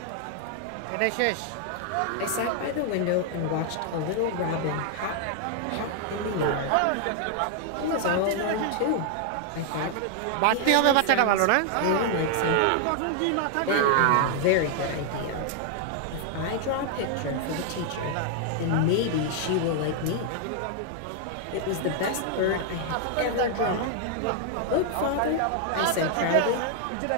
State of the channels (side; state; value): both; different; correlation 0.00